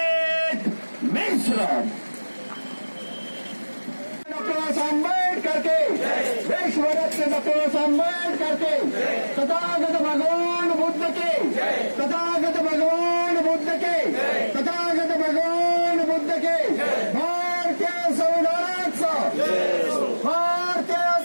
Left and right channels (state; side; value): inverted; both; correlation -1.00